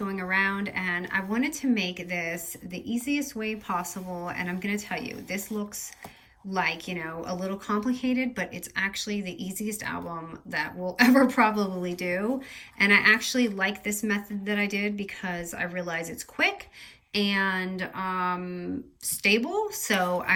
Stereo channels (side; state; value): both; identical; correlation 1.00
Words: around and I wanted to make this the easiest way possible, and I'm going to tell you, this looks like, a little complicated, but it's actually the easiest album that we'll ever probably do. And I actually like this method that I did because I realize it's quick and stable, so